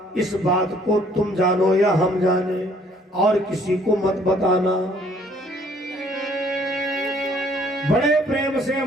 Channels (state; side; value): normal; both; correlation 0.61